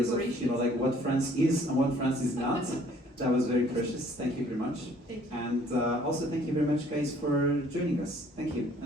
of, you know, like what France is and what France is not. That was very precious. Thank you very much. Thank you. And also thank you very much, guys, for joining us. Thank you,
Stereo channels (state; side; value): normal; both; correlation 0.58